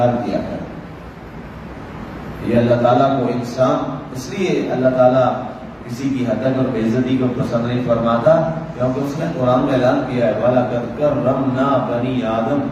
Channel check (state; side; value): identical; both; correlation 1.00